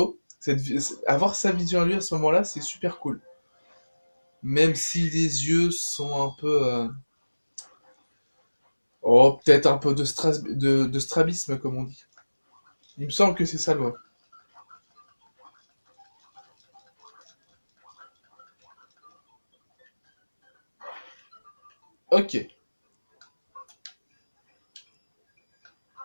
Avoir sa vision à lui à ce moment-là, c'est super cool. Même si les yeux sont un peu... Oh, peut-être un peu de strabisme, comme on dit. Il me semble que c'est ça le mot. Ok.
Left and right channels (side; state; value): both; inverted; correlation -1.00